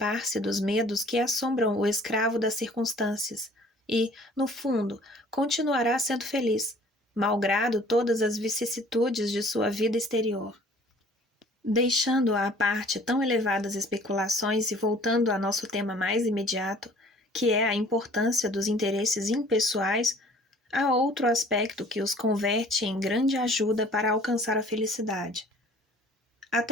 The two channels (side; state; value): both; normal; correlation 0.52